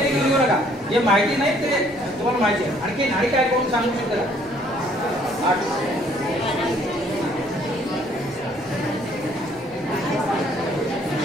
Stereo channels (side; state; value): both; normal; correlation 0.62